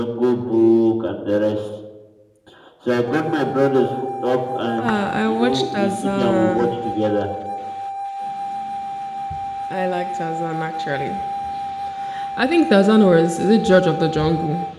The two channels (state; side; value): identical; both; correlation 1.00